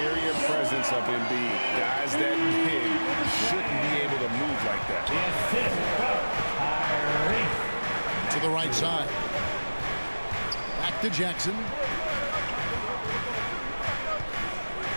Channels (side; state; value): both; inverted; correlation -1.00